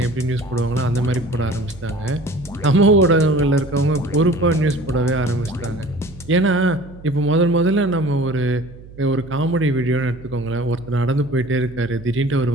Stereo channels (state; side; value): noise; right; hum, 19 dB below the sound